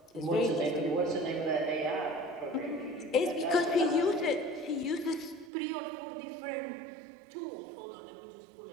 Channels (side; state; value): left; drops out; at 5.5 s